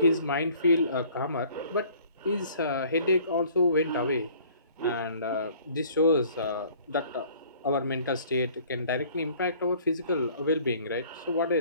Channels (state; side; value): inverted; both; correlation -0.54